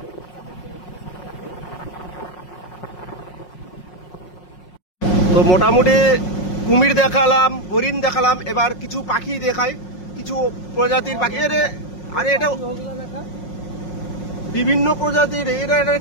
তো মোটামুটি কুমির দেখালাম, হরিণ দেখালাম, এবার কিছু পাখি দেখাই, কিছু প্রজাতির পাখি। আরে এটা বিভিন্ন প্রজাতির, এটা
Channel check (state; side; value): late; right; 5.5 ms